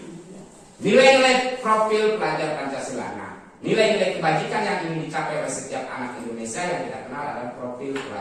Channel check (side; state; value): both; identical; correlation 1.00